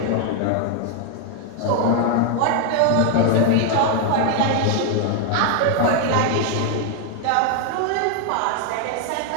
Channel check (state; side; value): different; both; correlation 0.00